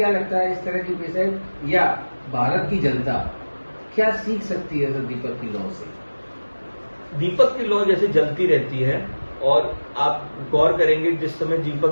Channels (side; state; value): both; inverted; correlation -1.00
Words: लगता है इस तरह की पेशेंट या भारत की जनता क्या सीख सकती है सर दीपक की लौ से? दीपक की लौ जैसे जलती रहती है और आप गौर करेंगे जिस समय